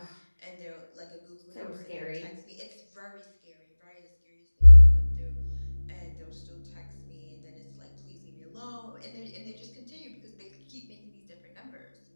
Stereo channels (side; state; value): both; inverted; correlation -1.00